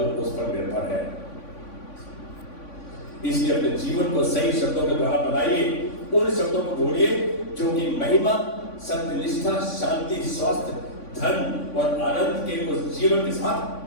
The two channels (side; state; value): right; late; 3.5 ms